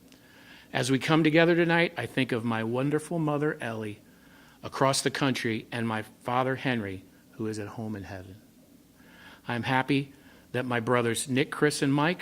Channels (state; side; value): identical; both; correlation 1.00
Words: As we come together tonight, I think of my wonderful mother, Ellie, across the country, and my father, Henry, who is at home in heaven. I'm happy that my brothers, Nick, Chris, and